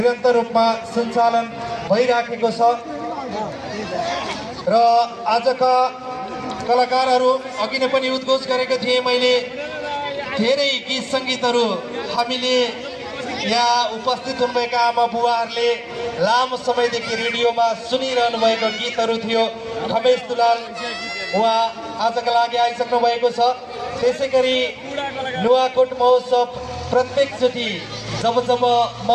रूपमा सञ्चालन भइराखेको छ र आजका कलाकारहरू अघि नै पनि उद्घोष गरेको थिएँ मैले। धेरै गीत सङ्गीतहरू हामीले यहाँ उपस्थित हुनुभएका आमा बुवाहरूले लामो समयदेखि रेडियोमा सुनिरहनु भएको गीतहरू थियो। खमेश दुलाल उहाँ आजका लागि आइसक्नु भएको छ। त्यसै गरी नुवाकोट महोत्सव प्रत्येकचोटि जब जब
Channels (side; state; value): both; identical; correlation 1.00